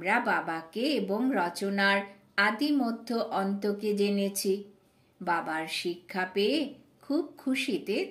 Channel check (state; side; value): identical; both; correlation 1.00